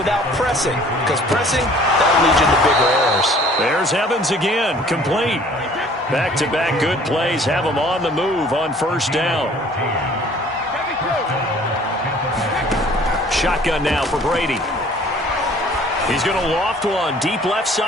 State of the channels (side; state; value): both; normal; correlation 0.53